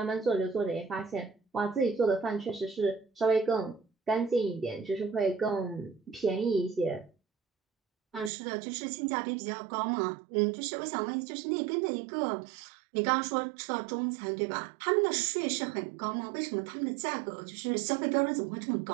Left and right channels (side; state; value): left; drops out; at 8.3 s